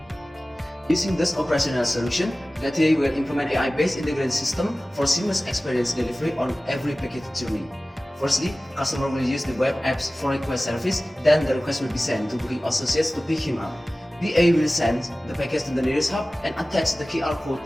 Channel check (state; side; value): normal; both; correlation 0.97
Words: Using this operational solution, Gati will implement AI-based integrated system for seamless experience delivery on every package journey. Firstly, customer will use the web apps for request service, then the request will be sent to booking associates to pick him up. BA will send the package to the nearest hub and attach the QR code